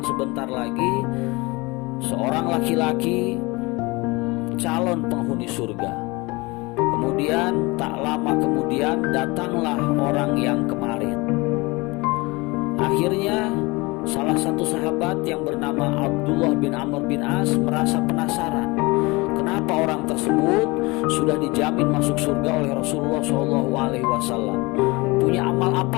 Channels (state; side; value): quieter; right; 24.4 dB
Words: lagi seorang laki-laki calon penghuni surga. Kemudian tak lama kemudian datanglah orang yang kemarin. Akhirnya salah satu sahabat yang bernama Abdullah bin Amr bin As merasa penasaran, kenapa orang tersebut sudah dijamin masuk surga oleh Rasulullah SAW. Punya amal